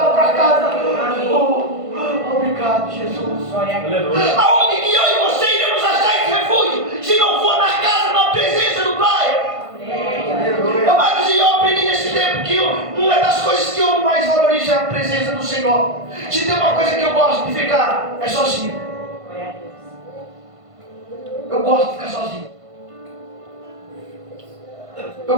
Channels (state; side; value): late; left; 1.5 ms